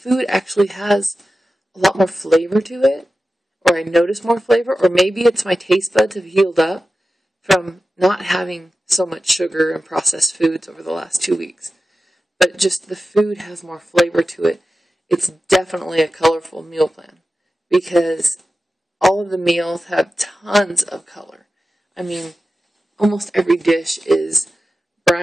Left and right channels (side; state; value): both; normal; correlation 0.94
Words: actually has a lot more flavor to it, or I notice more flavor, or maybe it's my taste buds have healed up from not having so much sugar and processed foods over the last 2 weeks. But just the food has more flavor to it, it's definitely a colorful meal plan because all of the meals have tons of color. I mean, almost every dish is